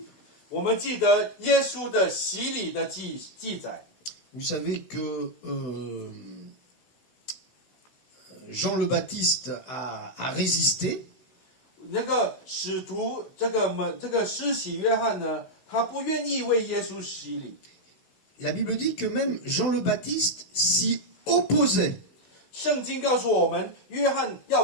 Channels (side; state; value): right; late; 16 ms